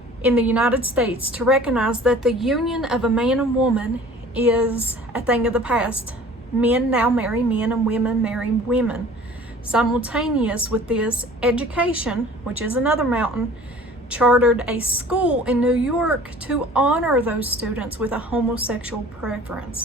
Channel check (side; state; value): both; normal; correlation 0.47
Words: in the United States, to recognize that the union of a man and woman is a thing of the past. Men now marry men and women marry women. Simultaneous with this, education, which is another mountain, chartered a school in New York to honor those students with a homosexual